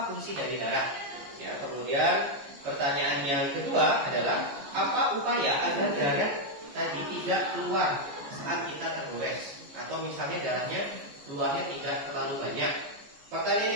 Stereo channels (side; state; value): left; late; 14 ms